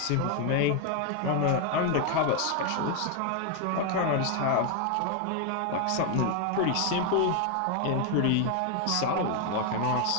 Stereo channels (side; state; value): both; different; correlation 0.01